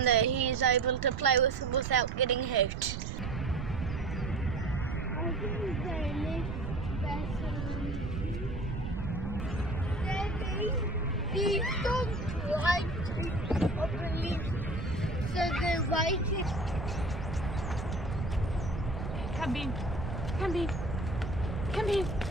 that he's able to play with without getting hurt. These dogs like to believe, so they're waiting. Come Bean. Come Bean. Come Bean.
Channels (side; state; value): right; noise; rumble, 5 dB below the sound